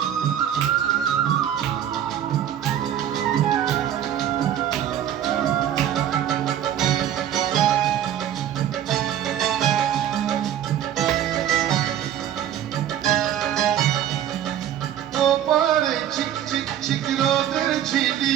ওপারে চিক চিক চিক রোদের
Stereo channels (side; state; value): left; quieter; 10.5 dB